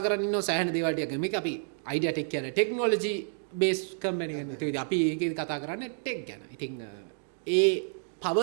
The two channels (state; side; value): silent; left; digital silence